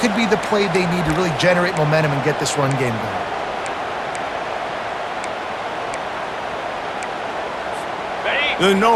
could be the play they need to really generate momentum and get this run game going. The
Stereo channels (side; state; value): both; identical; correlation 1.00